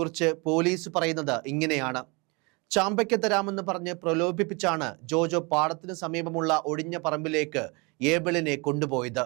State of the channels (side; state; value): left; quieter; 29.1 dB